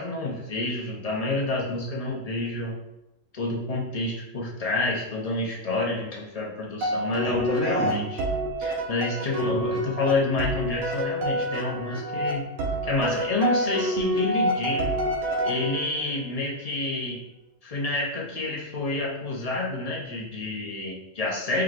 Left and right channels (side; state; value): both; normal; correlation -0.01